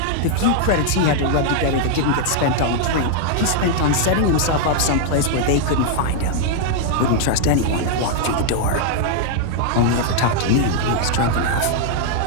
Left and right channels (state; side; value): different; both; correlation -0.01